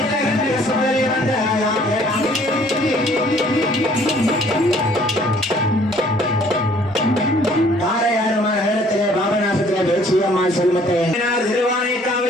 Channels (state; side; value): normal; both; correlation 0.58